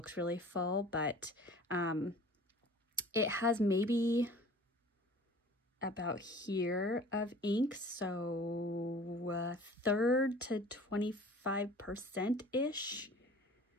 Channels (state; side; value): normal; both; correlation 0.46